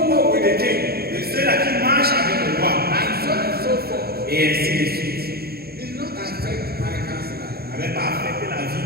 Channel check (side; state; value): left; late; 0.45 ms